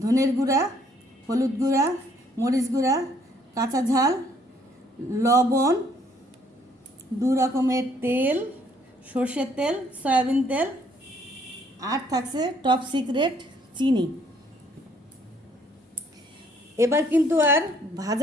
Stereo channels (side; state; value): both; normal; correlation 0.64